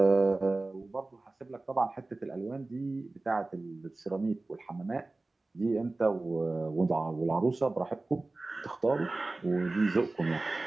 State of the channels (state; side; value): quieter; left; 3.1 dB